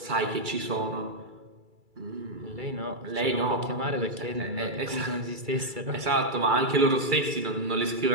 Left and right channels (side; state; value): left; late; 2.3 ms